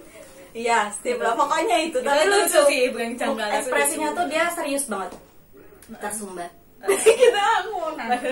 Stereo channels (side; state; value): both; identical; correlation 1.00